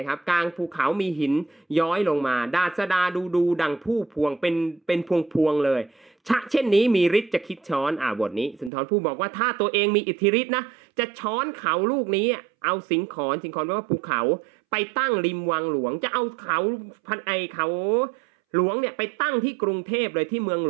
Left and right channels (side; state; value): left; drops out; at 8.7 s